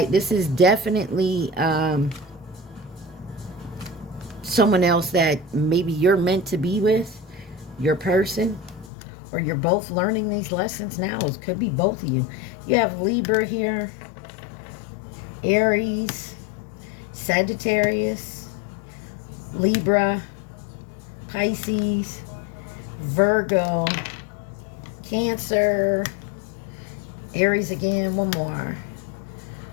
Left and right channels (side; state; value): right; drops out; at 8.9 s